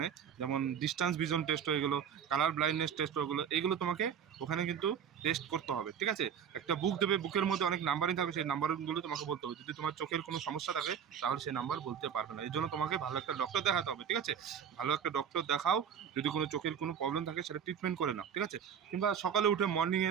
যেমন ডিস্টেন্স ভিজন টেস্ট হয়ে গেলো, কালার ব্লাইন্ডনেস টেস্ট হয়ে গেলো, এগুলো তোমাকে ওখানে কিন্তু টেস্ট করতে হবে, ঠিক আছে? একটা বুক দেবে, বুকের মধ্যে অনেক নাম্বারিং থাকবে, সেই নাম্বারগুলো তোমাকে বলতে হবে। যদি তোমার চোখের কোনো সমস্যা থাকে তাহলে সেই নাম্বার বলতে পারবে না, এই জন্য তোমাকে ভালো একটা ডক্টর দেখাতে হবে, ঠিক আছে? ভালো একটা ডক্টর দেখাও, যদি কোনো চোখের কোনো প্রবলেম থাকে সেটা ট্রিটমেন্ট করে নাও, ঠিক আছে? কিংবা সকালে উঠে মর্নিংয়ে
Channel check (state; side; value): quieter; left; 7.9 dB